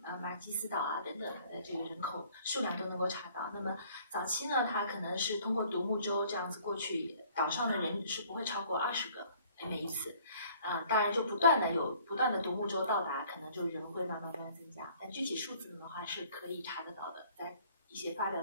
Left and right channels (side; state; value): both; inverted; correlation -0.56